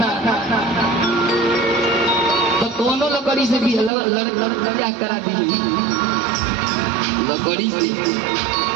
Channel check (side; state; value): left; drops out; at 3.9 s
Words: तो दोनों लकड़ी से भी लड़का करा दी, लकड़ी से